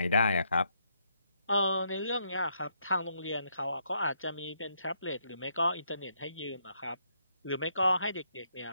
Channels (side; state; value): both; inverted; correlation -0.75